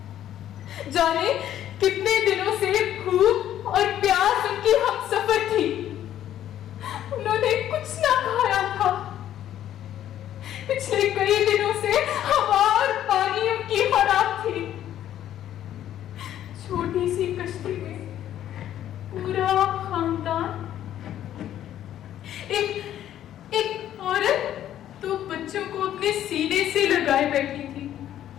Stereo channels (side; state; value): right; quieter; 11.5 dB